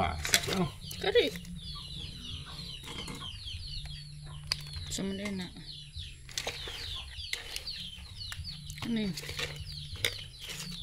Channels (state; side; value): identical; both; correlation 1.00